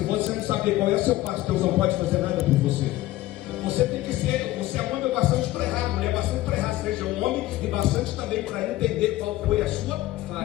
você não saber qual é o seu passo, Deus não pode fazer nada por você. Você tem que ser, você é um homem bastante para errar, mulher bastante para errar, seja um homem e bastante também para entender qual foi a sua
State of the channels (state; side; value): quieter; right; 16.4 dB